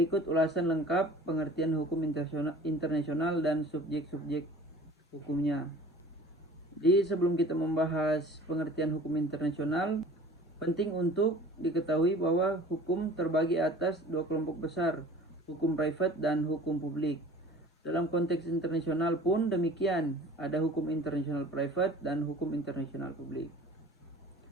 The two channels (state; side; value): normal; both; correlation 0.45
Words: ulasan lengkap pengertian hukum internasional dan subjek-subjek hukumnya. Jadi sebelum kita membahas pengertian hukum internasional, penting untuk diketahui bahwa hukum terbagi atas dua kelompok besar, hukum private dan hukum publik. Dalam konteks internasional pun demikian, ada hukum internasional private dan hukum internasional publik.